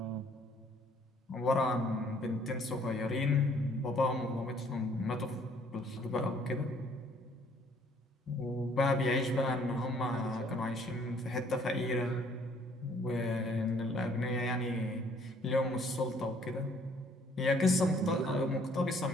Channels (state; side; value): normal; both; correlation 0.61